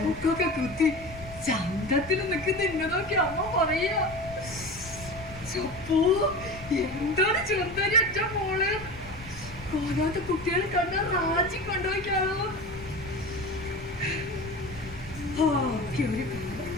മൂക്കൊക്കെ കുത്തി ചന്തത്തിൽ നിൽക്കുന്ന എന്നെ നോക്കി അമ്മ പറയാ, ചപ്പോ എന്താണ് ചെറുതാരി ഒറ്റ മോള് കോലാത്ത കുട്ടികളെ കണ്ട റാജി കൊണ്ടുപോയിക്കാണോ.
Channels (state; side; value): noise; left; rumble, 15 dB below the sound